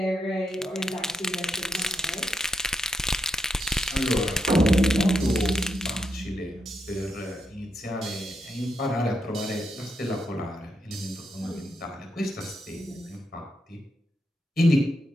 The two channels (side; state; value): both; normal; correlation 0.81